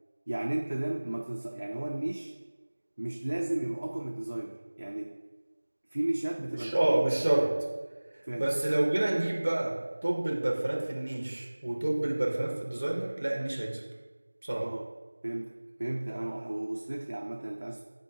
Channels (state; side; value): inverted; both; correlation -1.00